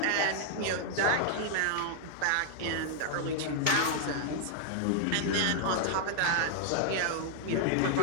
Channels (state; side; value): different; both; correlation -0.01